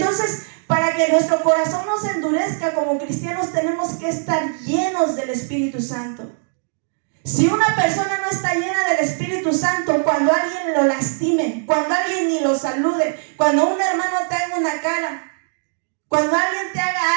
para que nuestro corazón no se endurezca como cristianos, tenemos que estar llenos del Espíritu Santo. Si una persona no está llena del Espíritu Santo, cuando alguien lo lastime, cuando alguien ni lo salude, cuando un hermano te haga una cara, cuando alguien te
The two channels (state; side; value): silent; left; digital silence